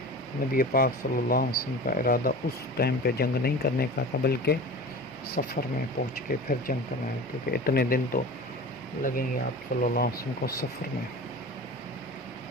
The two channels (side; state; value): both; normal; correlation 0.35